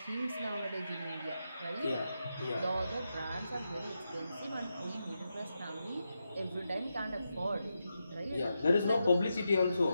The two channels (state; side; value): inverted; both; correlation -0.87